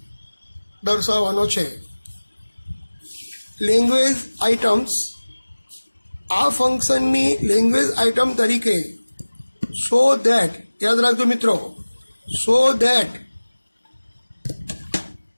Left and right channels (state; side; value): inverted; both; correlation -1.00